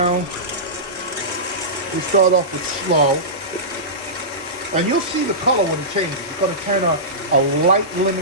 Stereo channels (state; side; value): normal; both; correlation -0.19